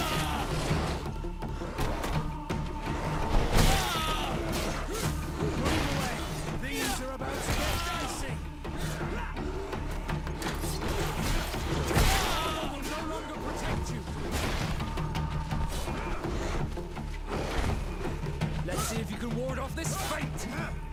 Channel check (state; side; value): identical; both; correlation 1.00